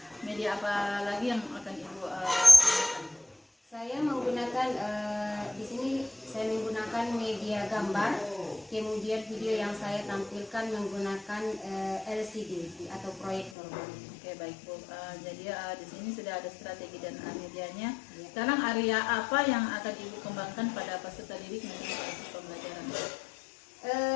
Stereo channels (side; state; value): right; drops out; at 13.5 s